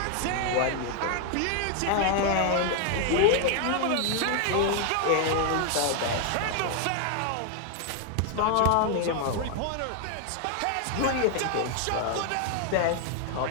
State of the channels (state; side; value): different; both; correlation 0.01